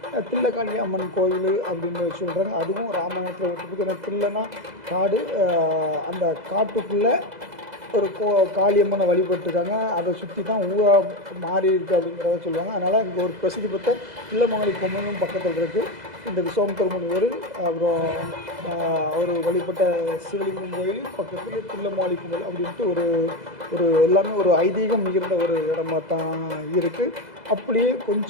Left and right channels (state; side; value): late; left; 2.0 ms